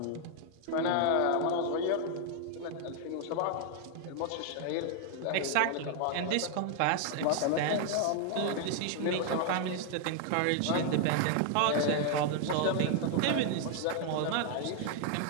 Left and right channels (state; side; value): different; both; correlation 0.00